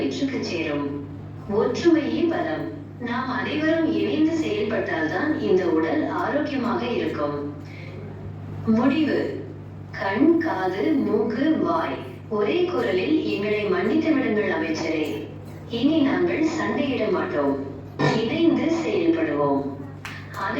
சேரும். ஒற்றுமையே பலம். நாம் அனைவரும் இணைந்து செயல்பட்டால்தான் இந்த உடல் ஆரோக்கியமாக இருக்கும். முடிவு: கண், காது, மூக்கு, வாய் ஒரே குரலில் எங்களை மன்னித்து விடுங்கள் அமைச்சரே. இனி நாங்கள் சண்டையிட மாட்டோம். இணைந்து செயல்படுவோம்.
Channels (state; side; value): identical; both; correlation 1.00